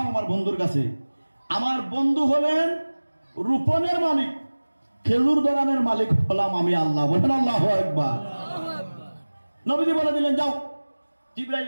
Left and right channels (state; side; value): inverted; both; correlation -1.00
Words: আমার বন্ধুর কাছে। আমার বন্ধু হলেন রোপণের মালিক, খেজুর ধরানোর মালিক হলাম আমি আল্লাহ। বলেন আল্লাহু আকবার। নবীজি বলে দিলেন, যাও। জিবরাইল